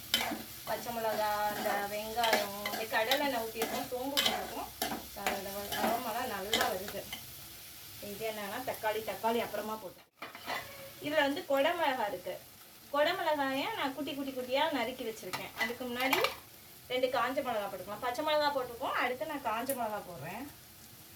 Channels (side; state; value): both; identical; correlation 1.00